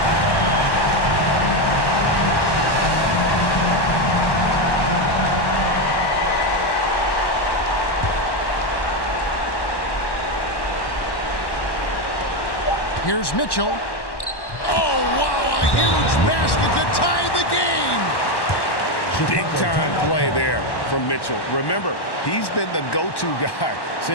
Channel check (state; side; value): late; right; 1.1 ms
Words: Here's Mitchell. Oh, wow, a huge basket to tie the game. Big-time play there from Mitchell. Remember, he's been the go-to guy